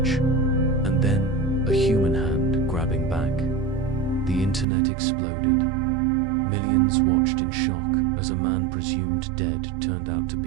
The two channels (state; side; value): drops out; left; at 4.7 s